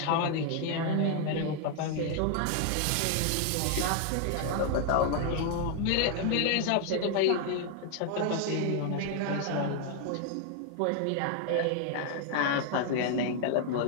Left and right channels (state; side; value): different; both; correlation 0.00